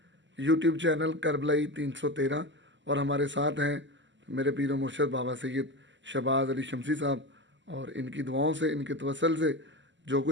यूट्यूब चैनल करबलाई 313 और हमारे साथ हैं मेरे पीर मुर्शद बाबा सैयद शहबाज अली शमसी साहब, और इनकी दुआओं से, इनके तवसल से जो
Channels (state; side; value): late; left; 0.54 ms